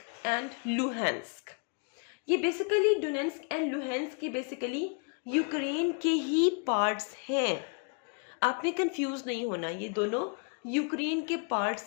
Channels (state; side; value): quieter; right; 37.7 dB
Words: एंड लुहांस्क। ये बेसिकली डोनेट्स्क एंड लुहांस्क के बेसिकली यूक्रेन के ही पार्ट्स हैं। आपने कंफ्यूज नहीं होना, ये दोनों यूक्रेन के